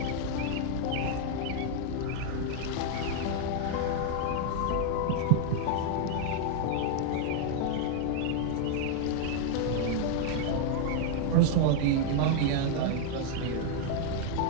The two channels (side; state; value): both; different; correlation 0.00